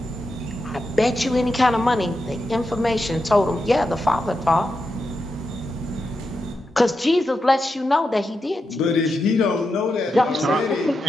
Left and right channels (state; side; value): normal; both; correlation 0.87